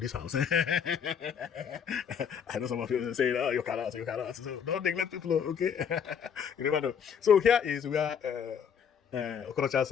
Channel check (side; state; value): right; quieter; 7.5 dB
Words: this house. I know some of you say, oh, you cannot. So don't neglect people, okay? You never know. So here is where